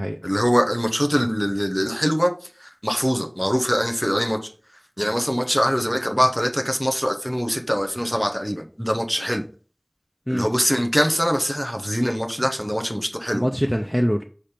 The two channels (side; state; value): both; identical; correlation 1.00